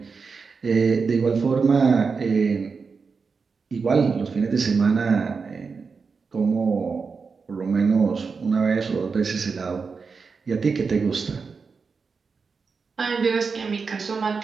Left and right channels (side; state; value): left; quieter; 5.0 dB